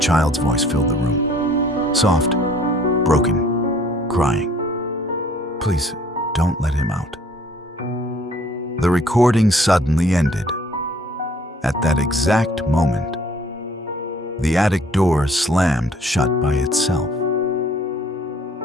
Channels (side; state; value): both; normal; correlation 0.58